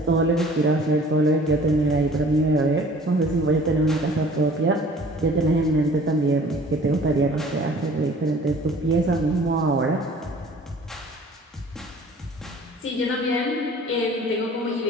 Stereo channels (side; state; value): both; normal; correlation 0.50